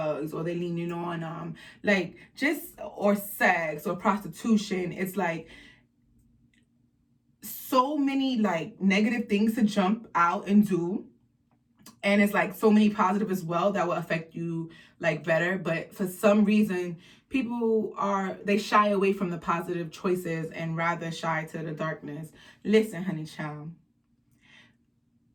or they're leaning on or sex or prostitution. It's like so many like negative things to jump out and do, and it's like so many positive as well that will affect you like better. But for some reason, people they shy away from the positive choices and rather shy to the darkness. Listen, honey child,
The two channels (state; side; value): identical; both; correlation 1.00